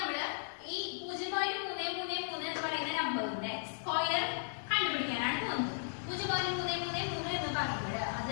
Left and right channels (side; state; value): right; silent; digital silence